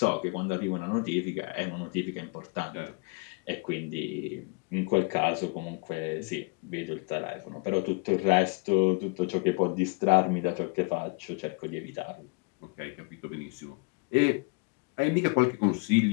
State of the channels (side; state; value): right; quieter; 32.3 dB